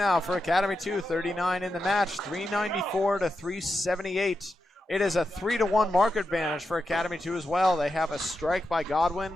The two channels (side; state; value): both; normal; correlation 0.88